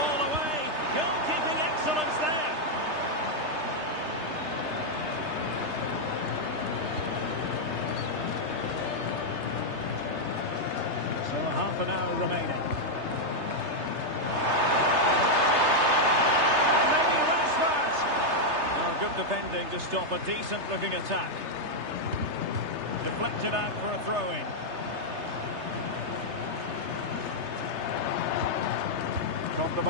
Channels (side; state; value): left; late; 3.3 ms